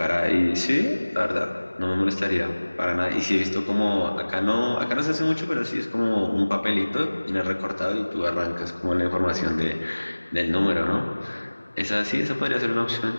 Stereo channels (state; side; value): inverted; both; correlation -1.00